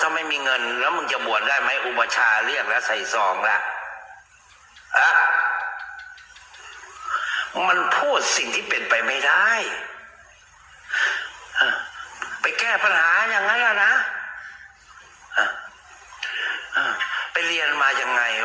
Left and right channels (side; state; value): both; identical; correlation 1.00